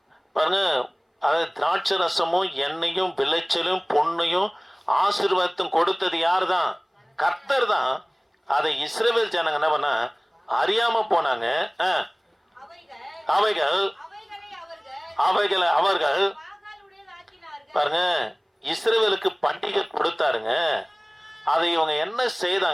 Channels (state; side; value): identical; both; correlation 1.00